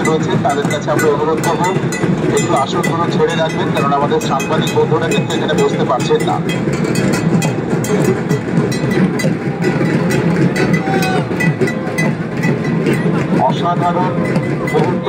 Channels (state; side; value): identical; both; correlation 1.00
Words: রয়েছে তাদের কাছে আমরা অনুরোধ করবো একটু আসনগুলো ছেড়ে রাখবেন, কারণ আমাদের সাংবাদিক বন্ধুরা কিন্তু এখানে বসতে পারছেন না। অসাধারণ মুহূর্ত